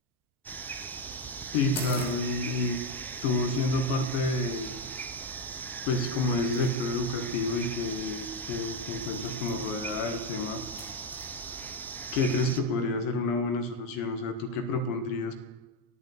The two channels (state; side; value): normal; both; correlation 0.08